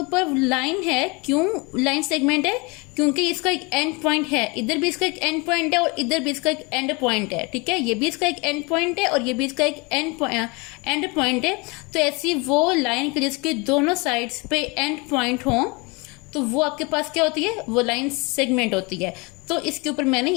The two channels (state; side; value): quieter; right; 27.9 dB